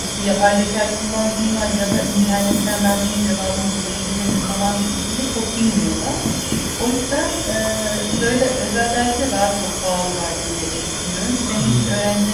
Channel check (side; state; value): both; identical; correlation 1.00